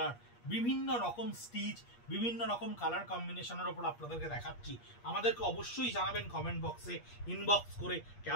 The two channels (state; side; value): late; right; 8.4 ms